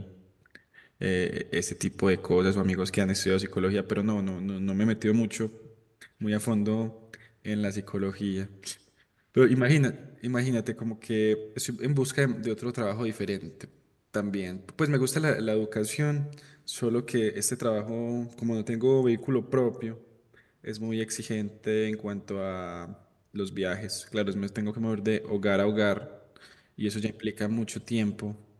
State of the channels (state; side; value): identical; both; correlation 1.00